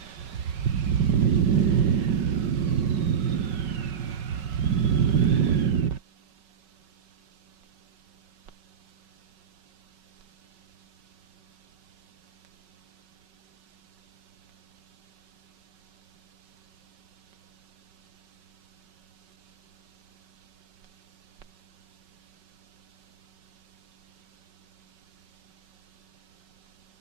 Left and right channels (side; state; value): left; quieter; 7.4 dB